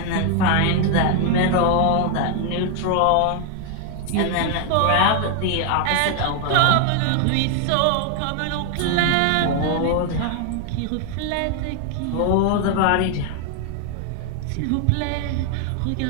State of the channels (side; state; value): both; different; correlation 0.00